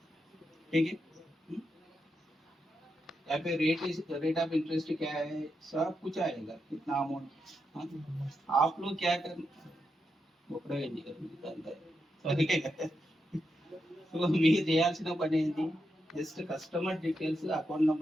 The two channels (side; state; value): both; normal; correlation 0.85